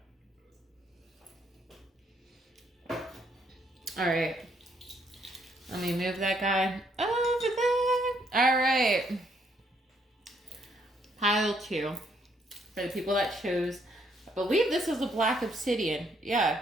Alright. Let me move that guy over there. Alright. Pile two. For the people that chose, I believe this is a black obsidian.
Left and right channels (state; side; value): normal; both; correlation 0.70